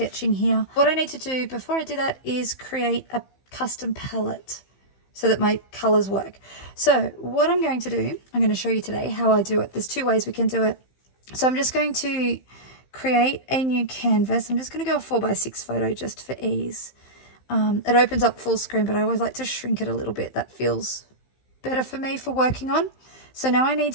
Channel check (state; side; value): late; right; 15 ms